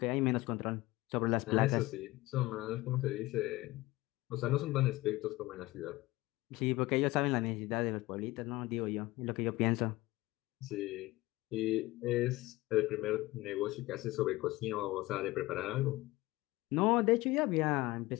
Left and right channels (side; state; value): right; quieter; 19.4 dB